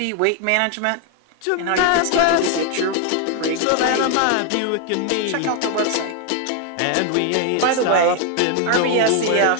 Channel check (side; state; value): both; different; correlation 0.01